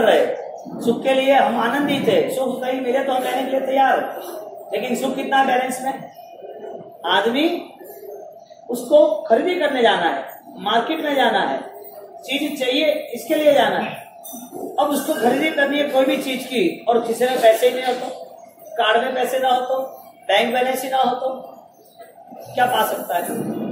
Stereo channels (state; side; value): identical; both; correlation 1.00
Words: रहे, सुख के लिए हम आनंदित है, सुख कहीं मिले तो हम लेने के लिए तैयार है, लेकिन सुख कितना बैलेंस में? आदमी उसको खरीदी करने जाना है, मार्केट में जाना है, चीज चाहिए इसके लिए जाना है। अब उसको खरीदी करनी है कोई भी चीज की, और किसी में पैसे ही नहीं हो तो, कार्ड में पैसे ना हो तो, बैंक बैलेंस ही ना हो तो क्या पा सकता है?